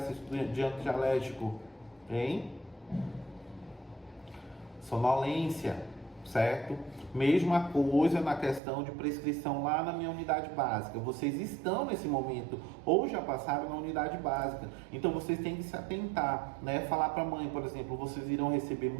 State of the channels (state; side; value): drops out; left; at 8.6 s